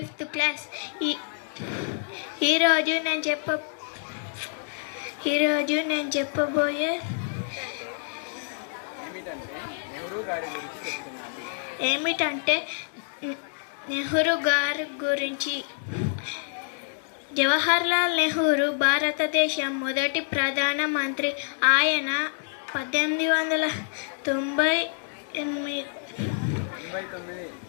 class. ఈరోజు నేను చెప్పబోయే ఏమిటంటే నెహ్రూ గారి గురించి. జవహర్లాల్ నెహ్రూ భారతదేశం మొదటి ప్రధానమంత్రి. ఆయన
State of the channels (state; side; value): silent; right; digital silence